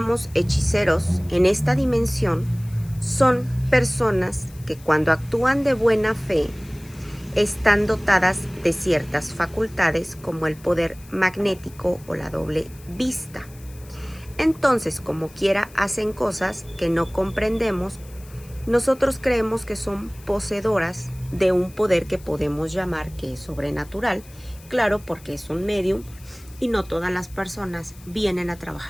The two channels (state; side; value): noise; left; hiss, 23 dB below the sound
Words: hechiceros en esta dimensión son personas que cuando actúan de buena fe están dotadas de ciertas facultades como el poder magnético o la doble vista. Entonces, como quiera, hacen cosas que no comprendemos. Nosotros creemos que son poseedoras de un poder que podemos llamar que es sobrenatural, claro, porque es un medium y no todas las personas vienen a